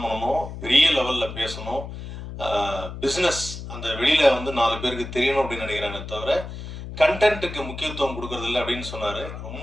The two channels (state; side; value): noise; left; hum, 10 dB below the sound